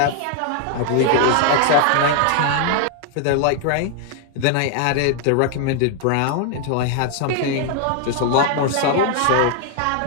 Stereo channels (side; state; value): both; different; correlation 0.00